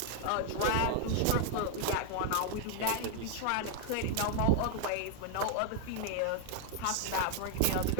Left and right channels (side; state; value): both; different; correlation 0.00